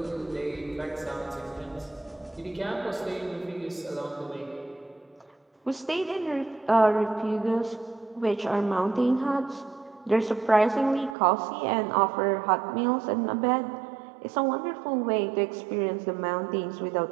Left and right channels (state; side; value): drops out; left; at 11.2 s